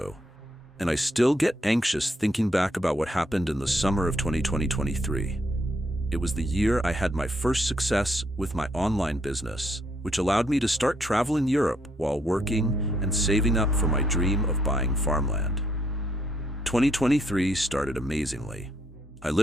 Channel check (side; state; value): both; normal; correlation 0.72